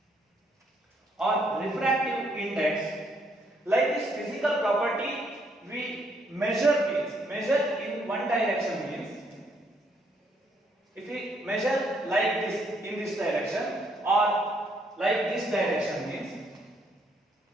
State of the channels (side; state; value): both; normal; correlation 0.70